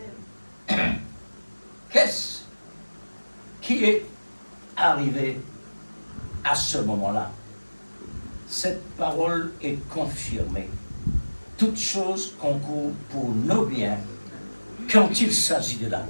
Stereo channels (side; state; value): both; inverted; correlation -1.00